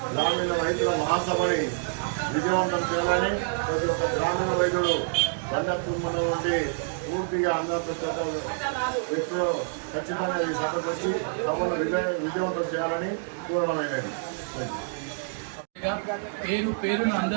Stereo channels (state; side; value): silent; left; digital silence